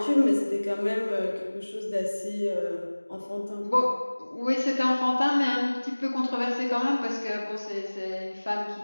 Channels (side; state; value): both; inverted; correlation -1.00